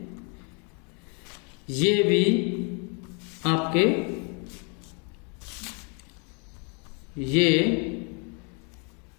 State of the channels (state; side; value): quieter; right; 36.0 dB